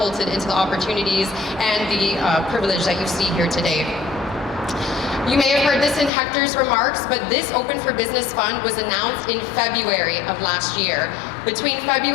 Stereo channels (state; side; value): drops out; right; at 6.1 s